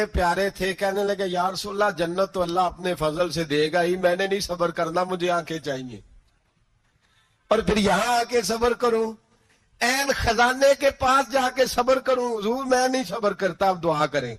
پیارے تھے، کہنے لگے یا رسول اللہ جنت تو اللہ اپنے فضل سے دے گا ہی، میں نے نہیں صبر کرنا، مجھے آنکھیں چاہیے. اور پھر یہاں آ کے صبر کروں، این خزانے کے پاس جا کے صبر کروں؟ حضور میں نہیں صبر کرتا، اب دعا کریں.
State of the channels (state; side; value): identical; both; correlation 1.00